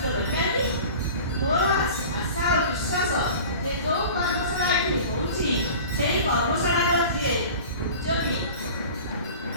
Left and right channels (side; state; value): both; inverted; correlation -0.39